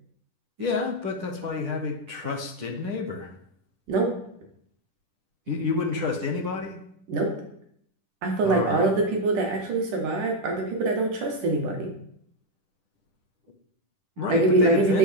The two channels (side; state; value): left; late; 10 ms